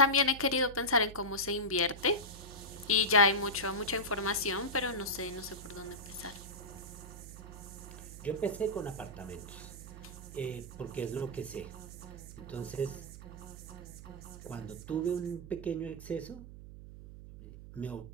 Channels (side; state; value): right; noise; hum, 13 dB below the sound